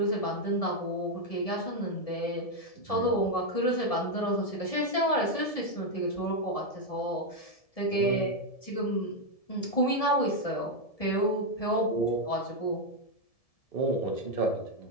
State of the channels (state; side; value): late; right; 1.7 ms